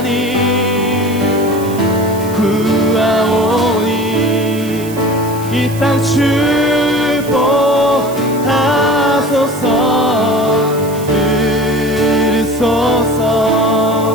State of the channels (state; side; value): noise; right; hiss, 16 dB below the sound